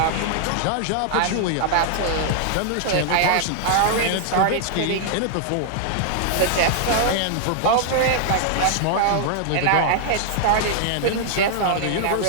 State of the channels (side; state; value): both; different; correlation -0.01